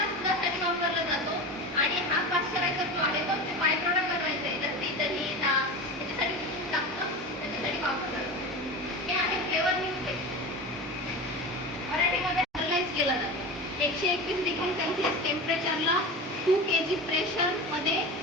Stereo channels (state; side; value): normal; both; correlation 0.28